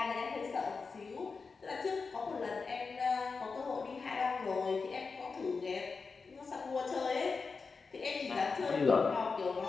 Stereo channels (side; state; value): right; quieter; 4.7 dB